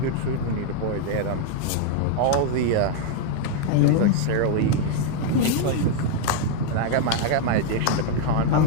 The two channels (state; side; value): different; both; correlation 0.00